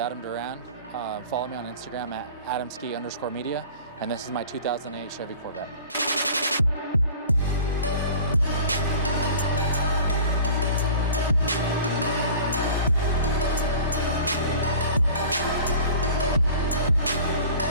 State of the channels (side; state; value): both; inverted; correlation -0.43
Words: Duran. Follow me on Instagram at adamski_media, and this is my 2008 Chevy Corvette.